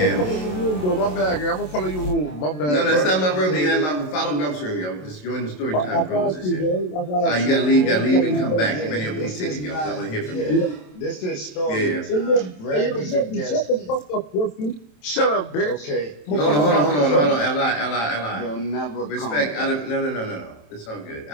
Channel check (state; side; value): late; right; 27 ms